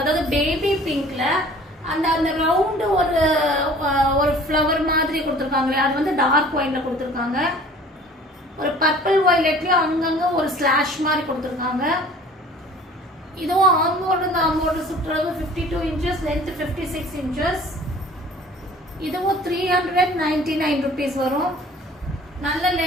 அதாவது பேபி பிங்க்ல அந்த அந்த ரவுண்டு ஒரு ஒரு ஃப்ளவர் மாதிரி கொடுத்துருக்காங்களே அது வந்து டார்க் ஒயின்ல கொடுத்துருக்காங்க. ஒரு பர்பிள் வயலட்லயும் அங்கங்க ஒரு ஸ்லாஷ் மாதிரி கொடுத்துருக்காங்க. இதுவும் ஆம்போடு சுற்றளவு 52 inches, length 56 inches. இதுவும் 399 rupees வரும். நல்ல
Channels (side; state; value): both; normal; correlation 0.48